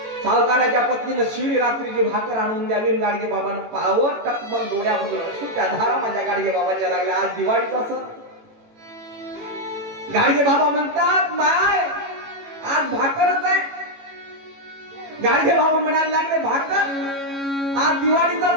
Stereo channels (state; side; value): late; left; 18 ms